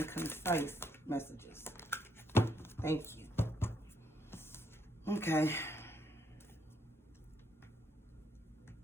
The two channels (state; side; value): normal; both; correlation 0.73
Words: concise messages. Thank you. Okay.